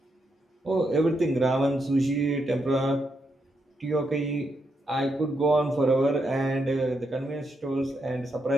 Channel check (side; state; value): both; normal; correlation 0.81